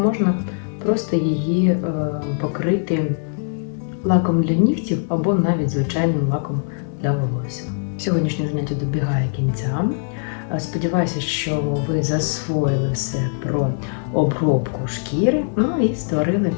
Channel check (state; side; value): silent; right; digital silence